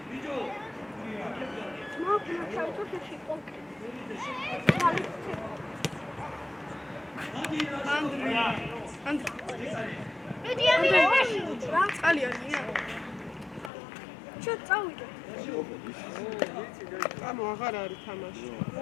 ანუ აღარ არის თამაში.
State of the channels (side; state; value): right; drops out; at 13.7 s